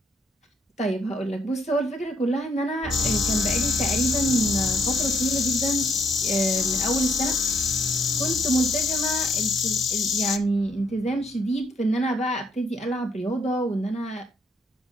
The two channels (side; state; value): both; normal; correlation 0.70